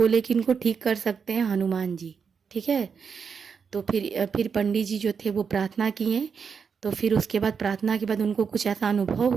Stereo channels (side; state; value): left; quieter; 6.2 dB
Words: कि इनको ठीक कर सकते हैं हनुमान जी, ठीक है। तो फिर पंडित जी जो थे वो प्रार्थना किए। तो फिर उसके बाद प्रार्थना के बाद उनको कुछ ऐसा अनुभव